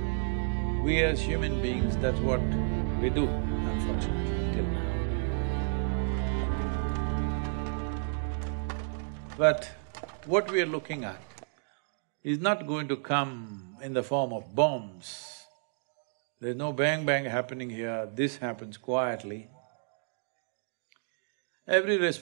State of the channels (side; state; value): left; silent; digital silence